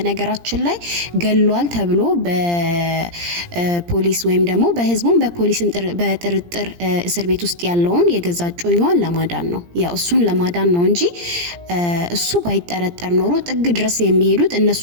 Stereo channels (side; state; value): left; late; 17 ms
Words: ላይ ገሏል ተብሎ በፖሊስ ወይም ደግሞ በህዝቡም በፖሊስም በጥርጥር እስር ቤት ውስጥ ያለውን የገዛ እጮኛዋን ለማዳን ነው። ያው እሱን ለማዳን ነው እንጂ እሱ ባይጠረጠር ኖሮ ጥግ ድረስ የሚሄዱት እነሱ